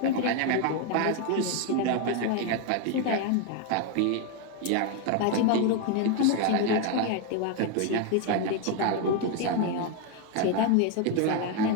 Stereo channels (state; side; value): different; both; correlation 0.01